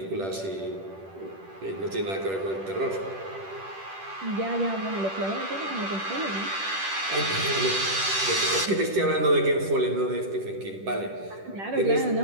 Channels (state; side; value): late; left; 10 ms